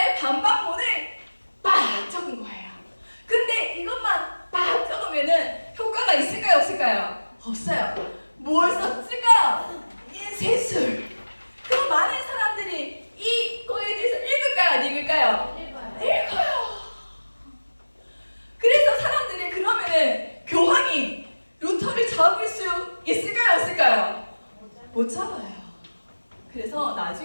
반박문을 막 적은 거예요. 근데 이것만 막 적으면은 효과가 있을까요? 없을까요? 없어요. 뭘 썼을까요? 인쇄술. 그럼 많은 사람들이 이거에 대해서 읽을까요? 안 읽을까요? 읽어요. 그래서 사람들이 그러면은 교황이 루터를 잡을 수 있을까요? 없을까요? 못 잡아요. 그래서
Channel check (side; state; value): both; inverted; correlation -1.00